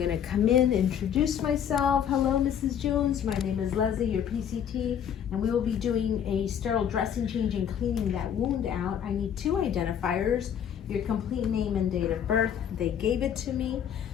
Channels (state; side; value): quieter; right; 8.8 dB